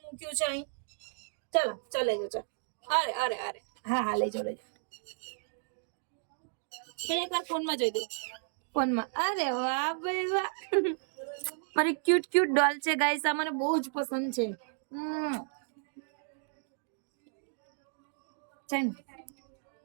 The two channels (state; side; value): silent; left; digital silence